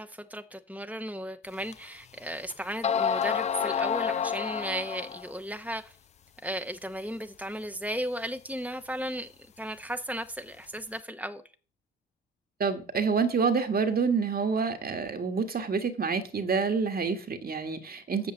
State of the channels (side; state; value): both; normal; correlation 0.36